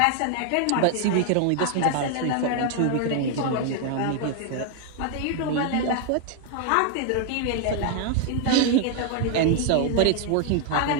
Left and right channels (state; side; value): different; both; correlation 0.00